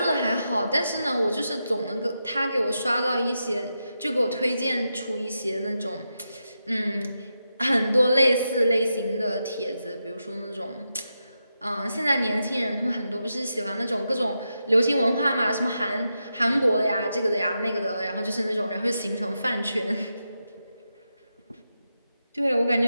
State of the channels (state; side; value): inverted; both; correlation -0.87